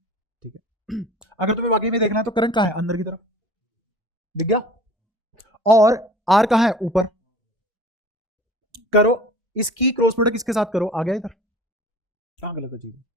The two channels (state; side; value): normal; both; correlation 0.44